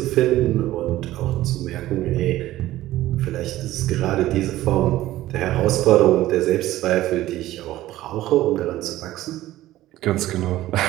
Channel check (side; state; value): left; quieter; 15.4 dB